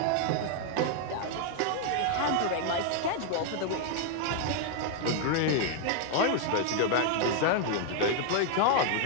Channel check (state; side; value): different; both; correlation 0.00